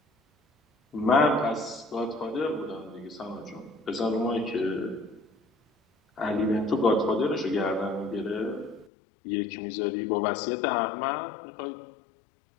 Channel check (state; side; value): drops out; right; at 8.9 s